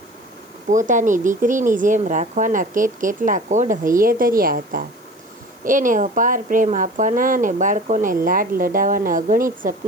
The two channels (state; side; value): noise; right; hiss, 30 dB below the sound